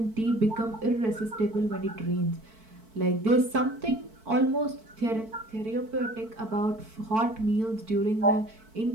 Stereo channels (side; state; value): left; late; 4.5 ms